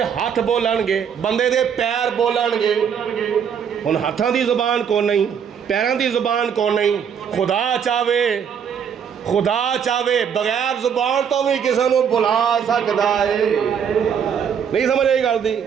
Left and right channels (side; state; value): left; quieter; 7.6 dB